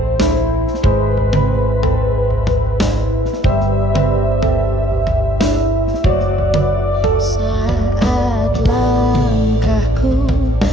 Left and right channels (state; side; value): normal; both; correlation 0.64